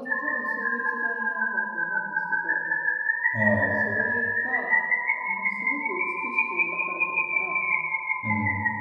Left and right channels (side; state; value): both; identical; correlation 1.00